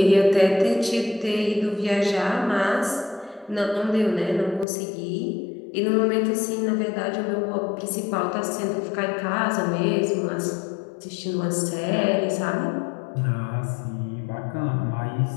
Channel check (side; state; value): right; drops out; at 4.7 s